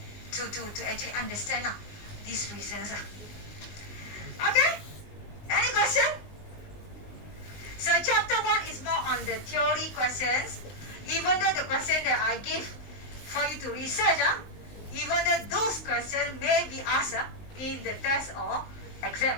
actually understand these reasons. Okay? Any question? So chapter 1 is more on the theory questions. Even though the question that I give for you to research, even though those questions may be asked in the test or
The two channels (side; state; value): right; late; 19 ms